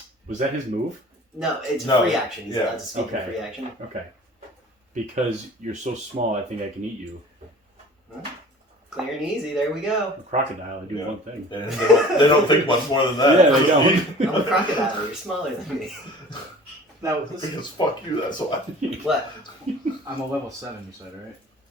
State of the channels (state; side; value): normal; both; correlation 0.45